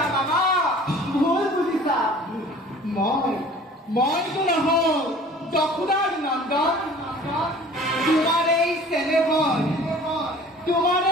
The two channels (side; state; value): both; normal; correlation 0.47